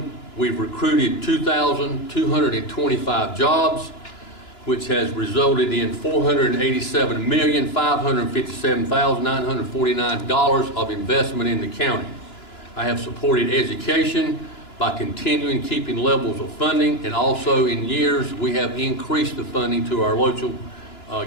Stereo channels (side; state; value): right; late; 2.9 ms